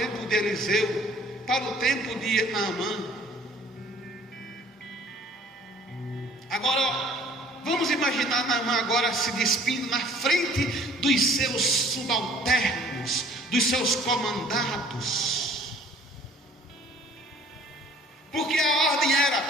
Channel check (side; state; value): both; normal; correlation 0.54